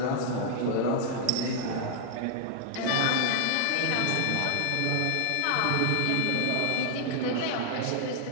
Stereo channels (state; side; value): different; both; correlation 0.00